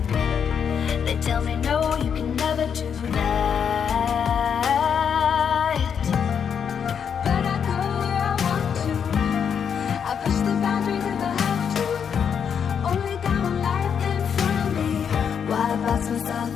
They tell me no, you can never do that. But I go where I want to. I push the boundaries if I have to. Only got one life in front of me. Why box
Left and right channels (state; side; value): quieter; right; 7.4 dB